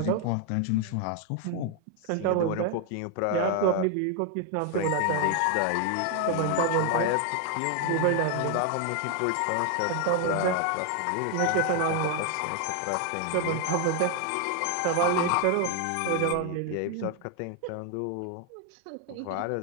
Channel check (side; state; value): both; different; correlation 0.01